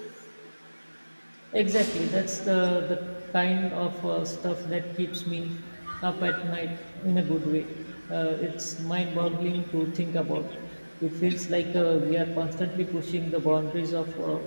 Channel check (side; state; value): both; inverted; correlation -1.00